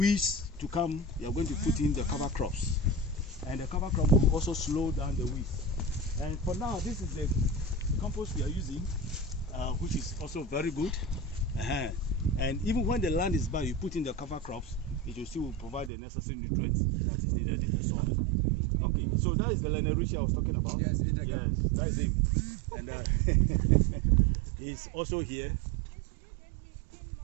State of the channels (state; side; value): drops out; left; at 15.9 s